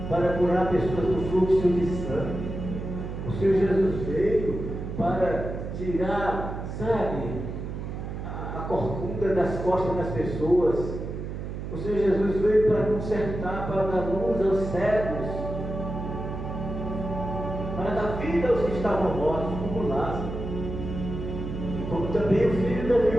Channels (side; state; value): right; noise; hum, 6 dB below the sound